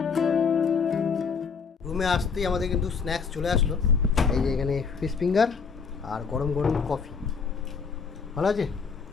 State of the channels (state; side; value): quieter; right; 5.6 dB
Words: রুমে আসতেই আমাদের কিন্তু স্ন্যাক্স চলে আসলো, এই যে এখানে ফিশ ফিঙ্গার আর গরম গরম কফি। ভালো আছে,